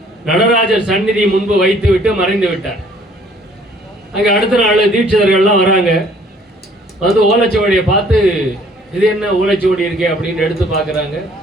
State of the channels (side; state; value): both; normal; correlation 0.58